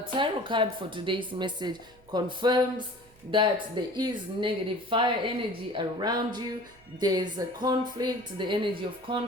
tarot card for today's message confirms that there is negative fire energy around you. There's a conflict, the energy of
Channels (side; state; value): right; noise; hum, 28 dB below the sound